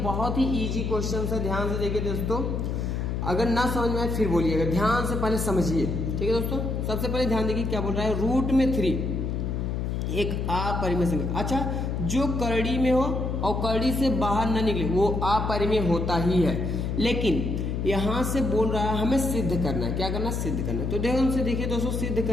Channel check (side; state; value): left; noise; hum, 1 dB below the sound